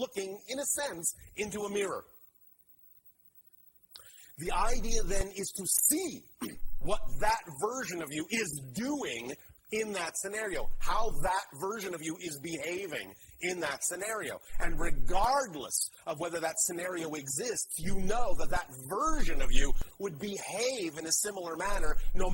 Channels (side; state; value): both; identical; correlation 1.00